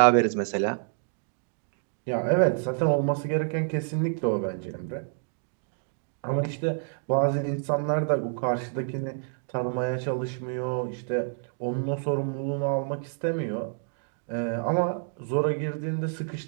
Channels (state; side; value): silent; left; digital silence